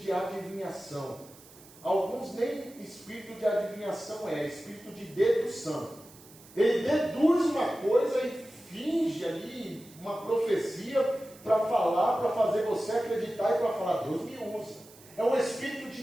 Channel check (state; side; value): noise; right; hiss, 22 dB below the sound